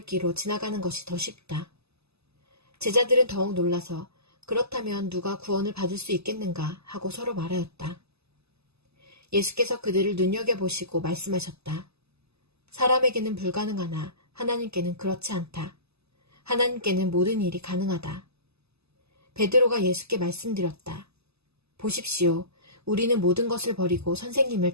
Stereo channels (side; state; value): left; late; 0.79 ms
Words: 지나가는 것이 더 쉽다. 제자들은 더욱 놀라서 그렇다면 누가 구원을 받을 수 있겠는가 하고 서로 말하였다. 예수께서 그들을 눈여겨보시고 말씀하셨다. 사람에게는 불가능하나 하나님께는 그렇지 않다. 하나님께는 모든 일이 가능하다. 베드로가 예수께 말씀드렸다. 보십시오. 우리는 모든 것을 버리고 선생님을